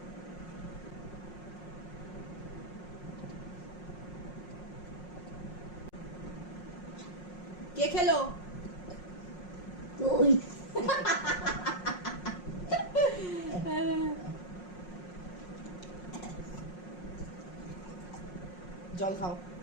কে খেলো? তুই। জল খাও।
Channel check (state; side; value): late; right; 5.5 ms